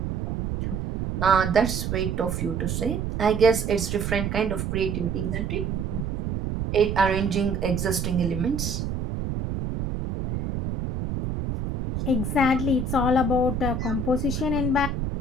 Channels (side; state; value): right; noise; rumble, 3 dB below the sound